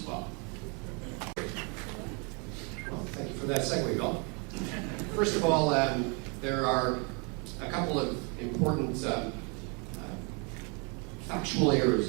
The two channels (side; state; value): left; quieter; 33.8 dB